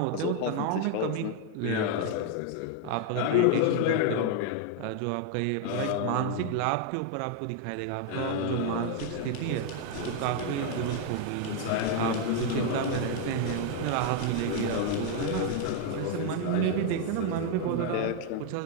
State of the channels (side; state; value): both; different; correlation 0.00